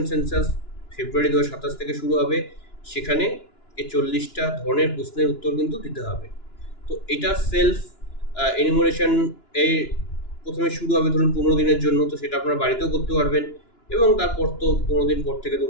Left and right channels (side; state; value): right; late; 2.9 ms